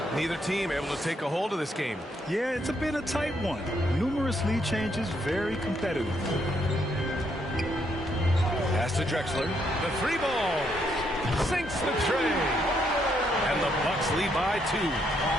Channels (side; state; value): both; normal; correlation 0.74